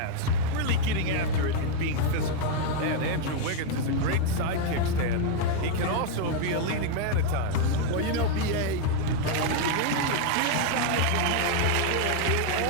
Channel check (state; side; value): different; both; correlation 0.00